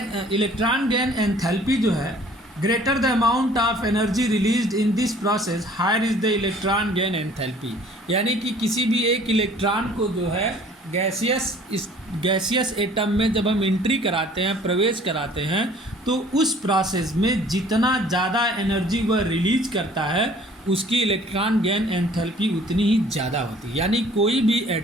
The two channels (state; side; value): normal; both; correlation 0.53